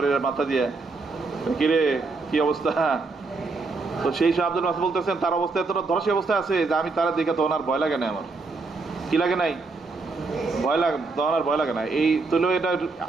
মাথা দিয়ে, কিরে কি অবস্থা? তো সেই সব আব্দুল মাসউদ বলতেছেন তার অবস্থা এতটা ধরাশায়ী অবস্থায় আছে যে আমি তারা দেখে তখন আর ভয় লাগে না, আমার কি লাগে নাই? ভয় লাগে, তখন আর ভয় লাগে না। এই তুলেও এটা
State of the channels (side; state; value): left; quieter; 3.9 dB